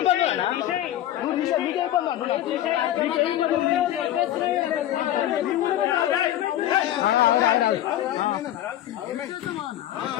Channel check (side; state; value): right; quieter; 12.7 dB